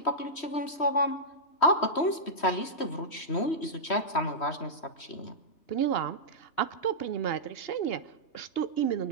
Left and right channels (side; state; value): right; late; 3.1 ms